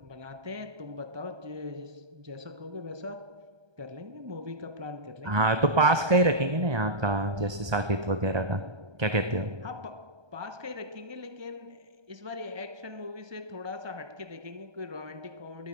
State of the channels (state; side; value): late; left; 1.2 ms